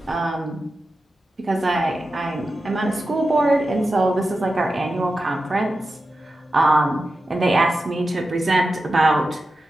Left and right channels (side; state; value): both; normal; correlation 0.91